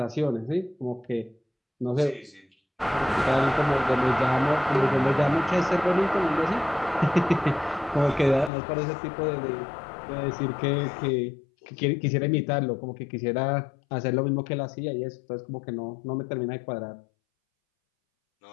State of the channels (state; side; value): drops out; right; at 8.5 s